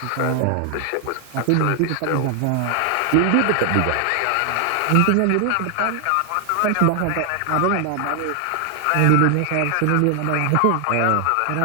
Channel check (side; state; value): both; different; correlation 0.00